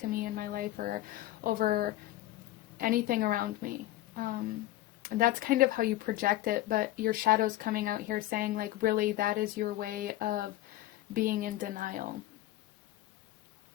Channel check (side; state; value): right; quieter; 15.6 dB